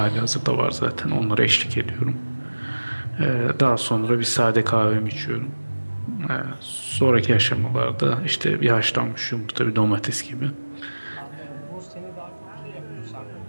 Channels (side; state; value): both; inverted; correlation -1.00